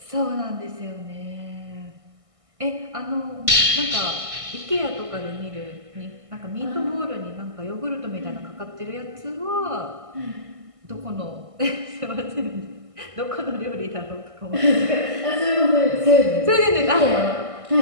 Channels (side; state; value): left; late; 1.6 ms